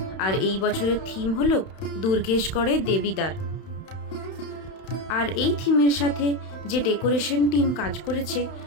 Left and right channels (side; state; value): right; late; 31 ms